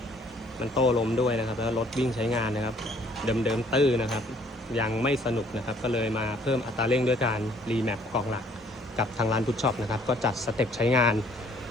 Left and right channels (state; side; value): normal; both; correlation 0.60